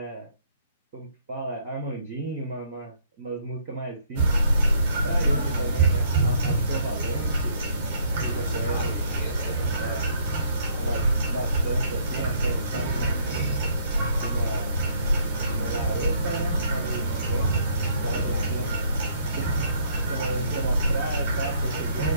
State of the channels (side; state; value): both; inverted; correlation -0.65